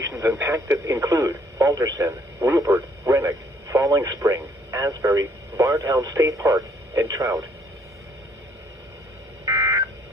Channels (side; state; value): both; normal; correlation 0.63